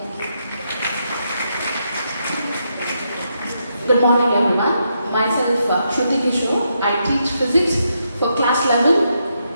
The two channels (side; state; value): both; inverted; correlation -0.81